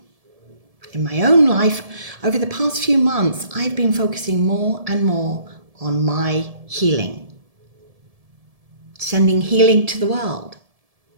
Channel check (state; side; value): late; left; 1.7 ms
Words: In my own life, over the past few months, I've been focusing more and more on my healing. Sending healing to the world,